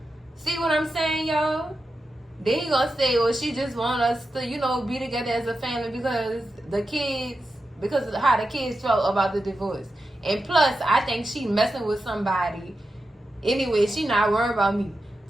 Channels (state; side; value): normal; both; correlation 0.90